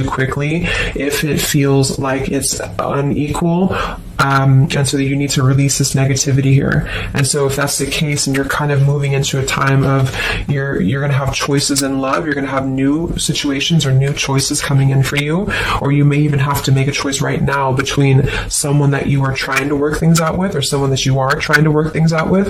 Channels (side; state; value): both; identical; correlation 1.00